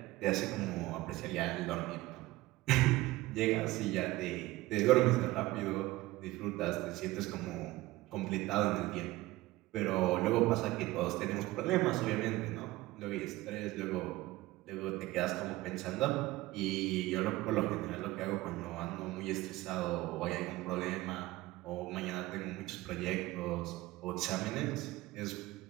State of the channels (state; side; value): quieter; left; 18.6 dB